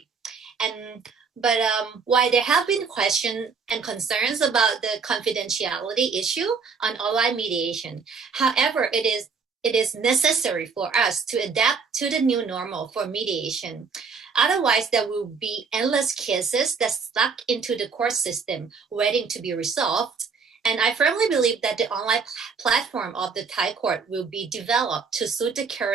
But while there have been questions and concerns about the confidentiality issue on online mediation, however, it is necessary for us to adapt to the new normal for mediation. Otherwise, there will be endless cases that stuck into the court system waiting to be resolved. And I firmly believe that the online platform of the Thai court will be developed to suit the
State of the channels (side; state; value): left; quieter; 5.3 dB